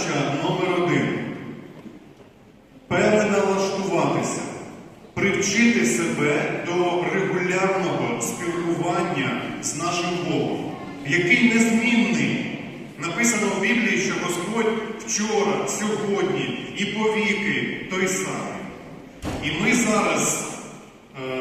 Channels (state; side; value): identical; both; correlation 1.00